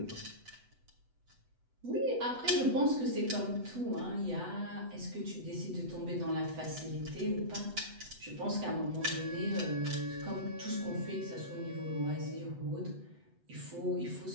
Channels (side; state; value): left; late; 8.0 ms